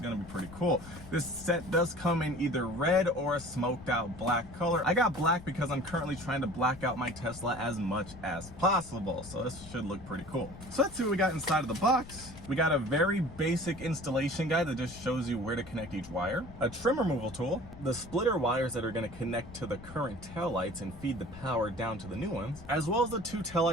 going to be pretty cool. This set does come in either red or a smoked out black color. I got black because I'm currently trying to black out my Tesla as much as possible, so this should look pretty cool. So let's see what we got inside of the box. We got a very basic installation guide that just shows you where to connect each wire, a trim removal tool, the splitter wires that are going to connect to the current taillights and feed the power down to the new ones, as well as the two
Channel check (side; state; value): left; noise; rumble, 16 dB below the sound